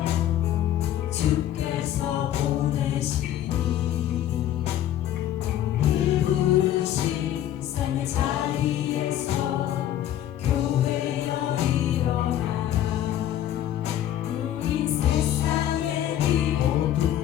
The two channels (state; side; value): quieter; right; 11.8 dB